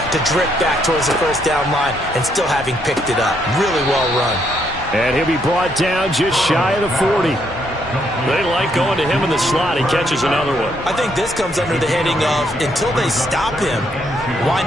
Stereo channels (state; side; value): normal; both; correlation 0.73